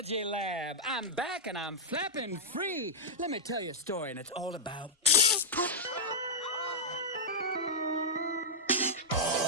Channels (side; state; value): both; normal; correlation -0.08